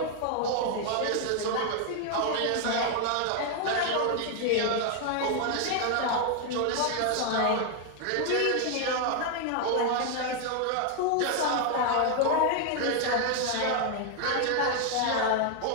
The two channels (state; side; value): different; both; correlation 0.00